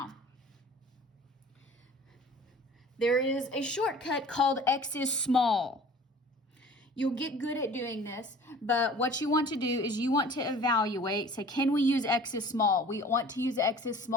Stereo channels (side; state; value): both; normal; correlation 0.46